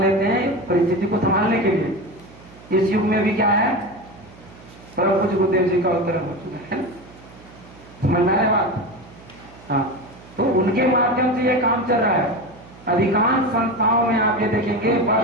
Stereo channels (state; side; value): noise; right; hum, 22 dB below the sound